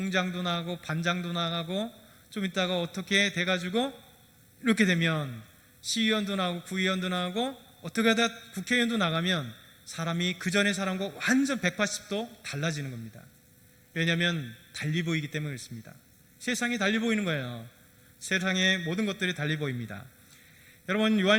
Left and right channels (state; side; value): identical; both; correlation 1.00